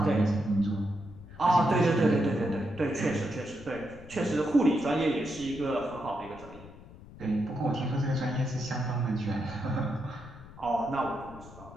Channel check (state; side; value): noise; left; rumble, 18 dB below the sound